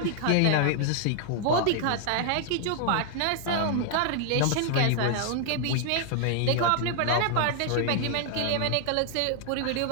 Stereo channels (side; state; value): both; different; correlation 0.00